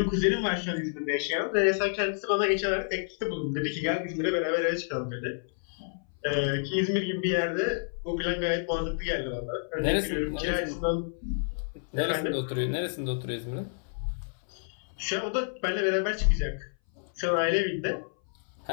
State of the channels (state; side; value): silent; right; 58 dB below the other